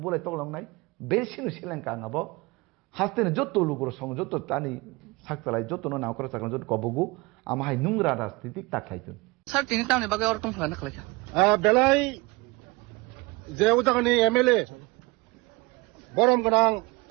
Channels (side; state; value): left; quieter; 24.3 dB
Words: बोलाय तगलांनाय बेसिनो सेलेंका आंबो हास्तेने जत्तो लुगुर सं जत्तो तानि साकतालाय जत्तो नावकरा साकन जत्तो कबगु आमाहाय नुंग्रा राजनीतिक ताखायतुन স্যার তিনি টাউনে বাগে অর টংফানা খালাইখা বেলাই যে উদাহরণে এমএলএ বরম গোনাं